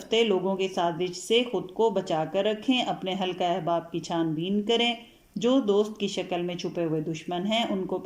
لوگوں کی سازش سے خود کو بچا کر رکھیں، اپنے حلقہ احباب کی چھان بین کریں، جو دوست کی شکل میں چھپے ہوئے دشمن ہیں ان کو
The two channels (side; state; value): both; identical; correlation 1.00